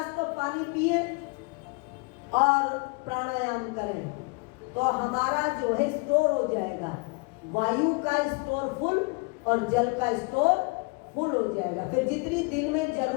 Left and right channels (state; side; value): quieter; right; 30.3 dB